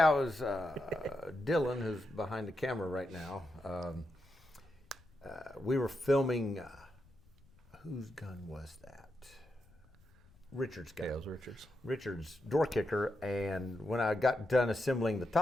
it was Dylan, who's behind the camera right now. We were filming whose gun was that? Richard's gun. Yeah, it was Richard's. Richard's door kicker, and when I got done assembling the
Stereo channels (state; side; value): noise; left; rumble, 27 dB below the sound